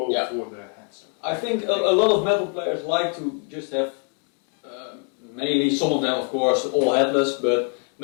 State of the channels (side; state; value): right; quieter; 39.8 dB